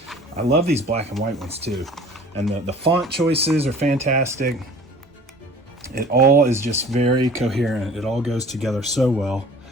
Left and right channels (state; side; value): normal; both; correlation 0.47